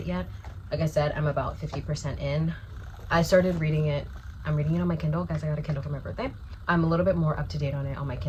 yet. Like I said, I'm about 50% in. I started reading it. I'm reading it on my Kindle. Guys, I got a Kindle for my birthday. I'm a little bit more up to date on it on my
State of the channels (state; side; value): identical; both; correlation 1.00